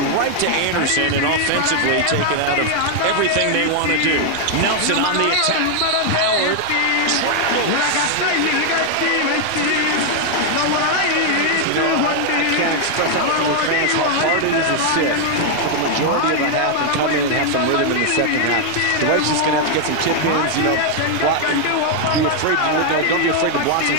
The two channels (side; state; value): both; different; correlation 0.00